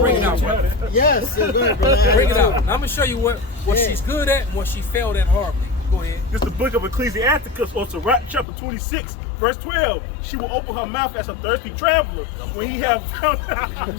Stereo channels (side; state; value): right; drops out; at 8.5 s